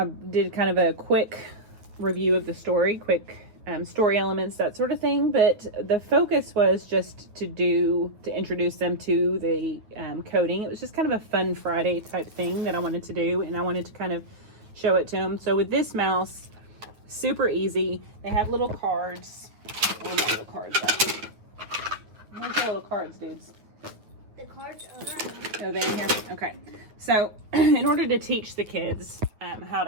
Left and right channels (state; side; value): late; left; 9.2 ms